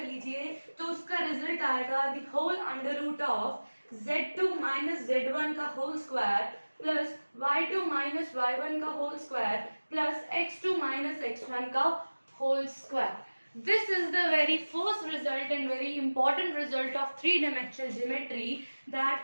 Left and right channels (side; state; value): both; inverted; correlation -1.00